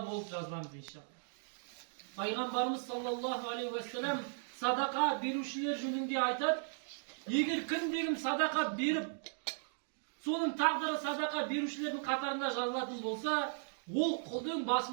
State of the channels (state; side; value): silent; left; digital silence